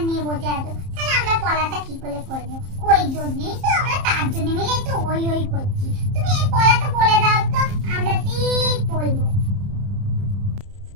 নিয়ে বসে আছো, তাহলে আমরা পড়াটা কি করে করবো? ওই জন্যই তো আমরা তার জন্য মিলে একটু ওই ওই করছি। তুমি এই পড়াটা বলে দাও তো, আমরা ঠিক বলবো।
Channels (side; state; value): left; late; 30 ms